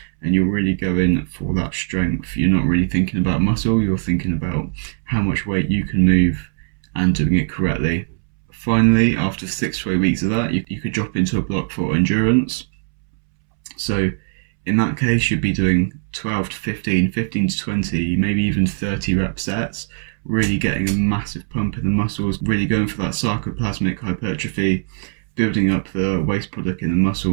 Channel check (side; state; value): left; silent; 66 dB below the other